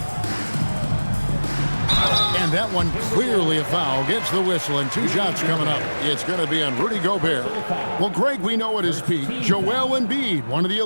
And that one clearly a foul. Gets the whistle and 2 shots coming up. It's going to be on Rudy Gobert. Well, Greg, we know at his peak, Joel Embiid, one of the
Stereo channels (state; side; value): inverted; both; correlation -1.00